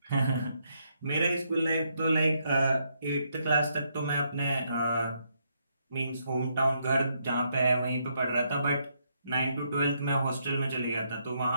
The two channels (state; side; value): inverted; both; correlation -0.76